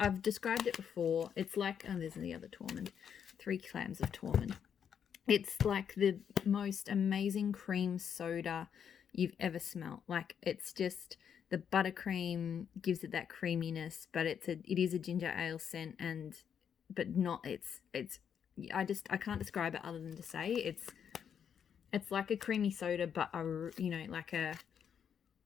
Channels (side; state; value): right; quieter; 7.9 dB